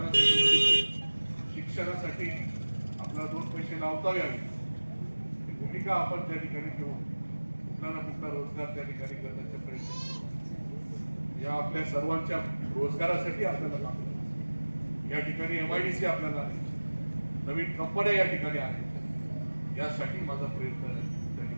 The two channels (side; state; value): both; inverted; correlation -1.00